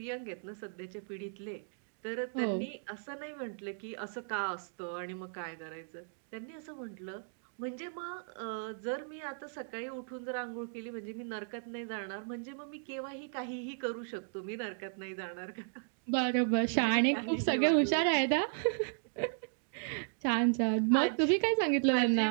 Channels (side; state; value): left; silent; digital silence